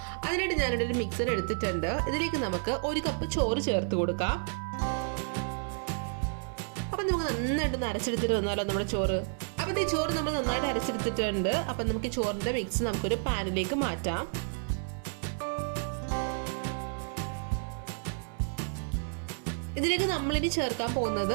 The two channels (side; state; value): left; silent; 57 dB below the other